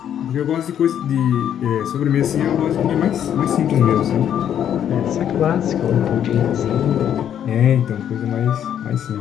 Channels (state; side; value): quieter; right; 9.7 dB